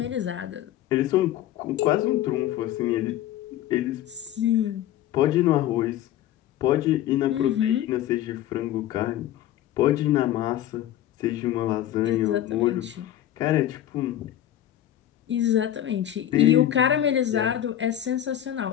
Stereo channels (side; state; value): right; quieter; 12.2 dB